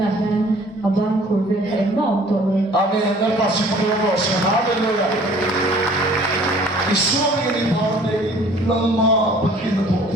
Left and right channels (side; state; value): both; normal; correlation 0.53